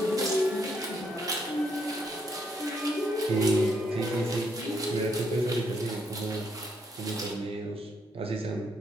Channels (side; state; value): both; normal; correlation 0.74